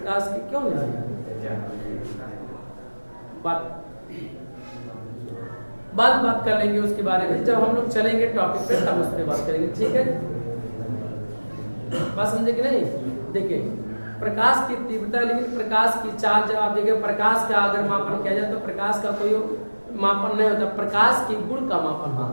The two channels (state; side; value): inverted; both; correlation -1.00